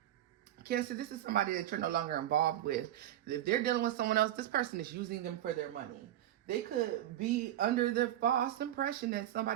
Cancer, this is somebody that you're no longer involved with. If they're dealing with someone else, this person is using them for their money. They could be under the false impression that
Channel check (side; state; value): left; quieter; 12.7 dB